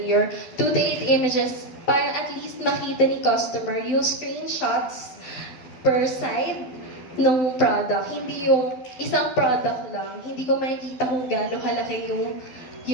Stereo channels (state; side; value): late; right; 12 ms